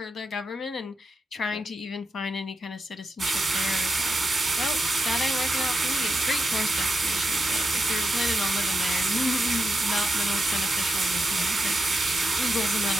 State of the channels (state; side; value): normal; both; correlation 0.86